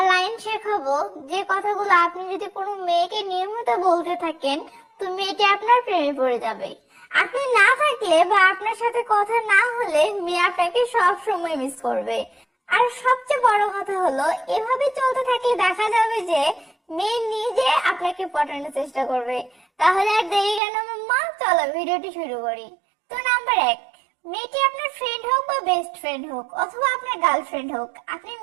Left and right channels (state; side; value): drops out; left; at 20.6 s